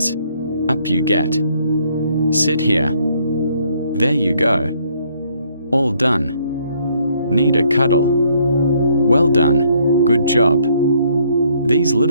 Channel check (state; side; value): inverted; both; correlation -0.67